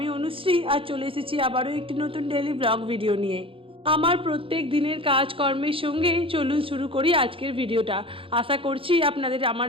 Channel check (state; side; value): late; left; 0.26 ms